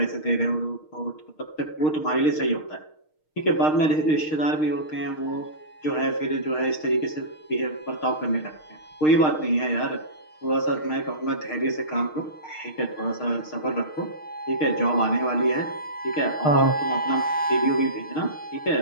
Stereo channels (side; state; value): right; late; 6.5 ms